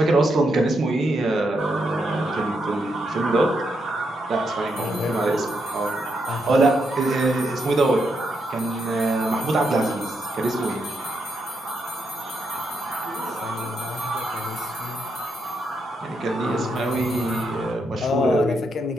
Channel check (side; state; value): both; normal; correlation 0.81